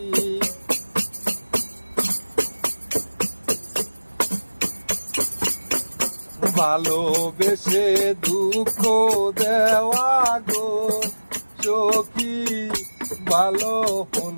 ভালোবেসে দুঃখ দেওয়া গো সখী, ভালো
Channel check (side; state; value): both; inverted; correlation -1.00